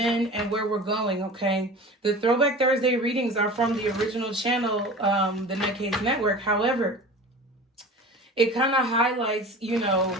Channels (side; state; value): both; normal; correlation 0.37